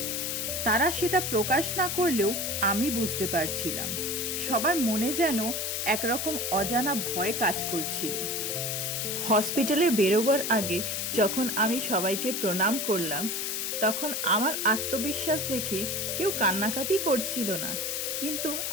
তারা সেটা প্রকাশ না করলেও আমি বুঝতে পারছিলাম সবার মনে যেন একরকম অজানা ভয় কাজ করছিল। হসপিটালে বেরোবার আগে যখন আমি সবাইকে প্রণাম করলাম, তখন আমার আত্মবিশ্বাস দেখে কেউ কান্নাকাটি করছিল না, কিন্তু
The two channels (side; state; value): left; noise; hiss, 1 dB below the sound